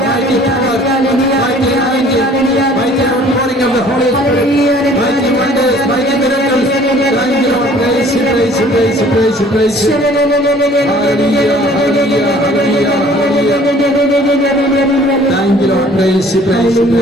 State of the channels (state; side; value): normal; both; correlation 0.53